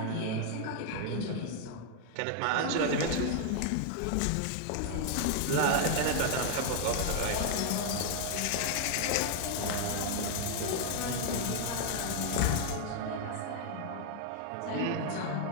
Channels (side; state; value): both; different; correlation 0.00